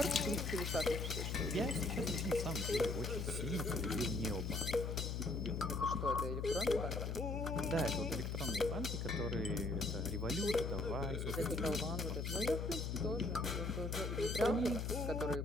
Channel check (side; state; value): left; noise; hum, 2 dB below the sound